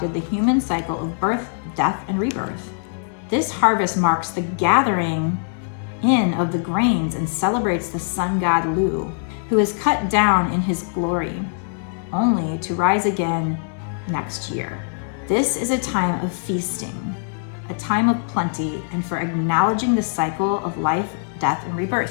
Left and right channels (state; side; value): silent; right; digital silence